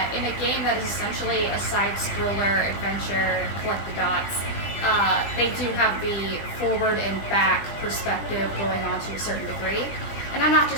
in a game that is essentially a side-scroller adventure, collect the dots, they do have the forward and back perspective going on to a certain degree. And I'm not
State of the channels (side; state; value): right; late; 20 ms